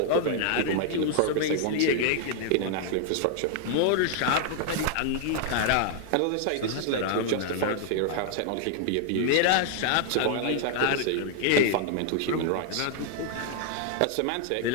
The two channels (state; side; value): different; both; correlation 0.00